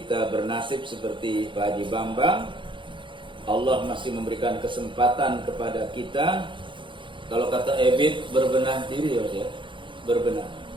bernasib seperti Pak Haji Bambang, Allah masih memberikan kesempatan kepada kita. Kalau kata Ebit, berbenah diri, ya, berbenah,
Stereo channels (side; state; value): left; late; 0.24 ms